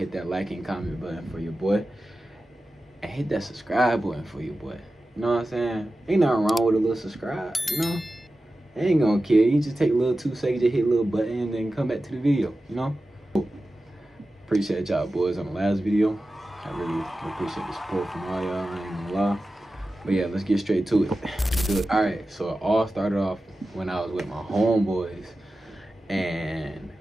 that like and comment button for your boy, and hit that subscribe button for your boy. You know what I'm saying? Ain't nothing wrong with a little subscribe, you know? It ain't gonna kill you. Just take a little 2 seconds, just hit a little button, and then come back to the video, you know? Appreciate y'all boys on the last video. I really appreciate the support from all y'all, I ain't gonna lie. But yeah, let's get straight to it. Let's do it. Alright, so it all started off when I was with my homeboys, and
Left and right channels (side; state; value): both; normal; correlation 0.94